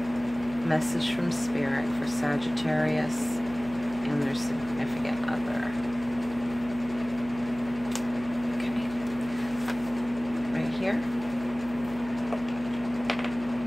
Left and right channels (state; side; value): noise; left; hum, 14 dB below the sound